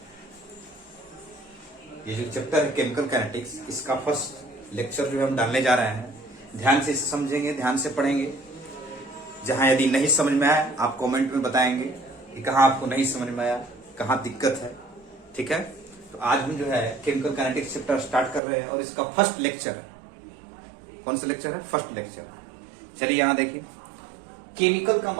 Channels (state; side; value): drops out; left; at 18.4 s